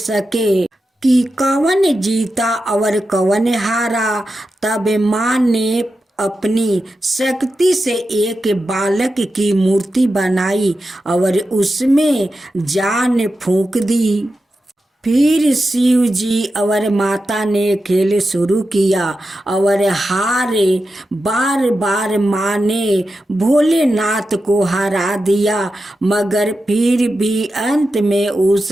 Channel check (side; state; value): both; normal; correlation 0.90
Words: कि कौन जीता और कौन हारा। तब माँ ने अपनी शक्ति से एक बालक की मूर्ति बनाई और उसमें जान फूंक दी। फिर शिव जी और माता ने खेल शुरू किया और हारे बार बार माँ ने भोलेनाथ को हरा दिया, मगर फिर भी अंत में उस